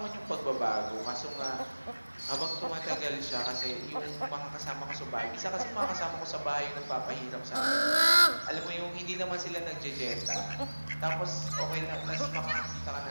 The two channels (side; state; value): both; inverted; correlation -1.00